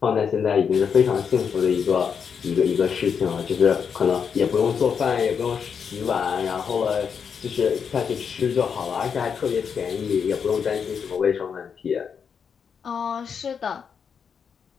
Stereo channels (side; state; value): right; quieter; 6.7 dB